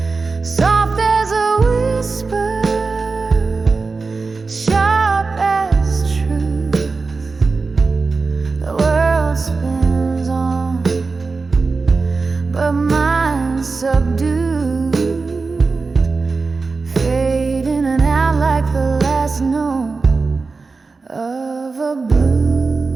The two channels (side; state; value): left; quieter; 4.2 dB